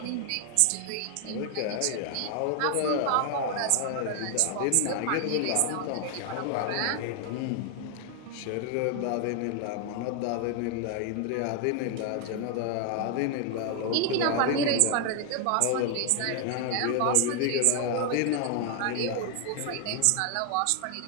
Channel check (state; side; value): different; both; correlation 0.00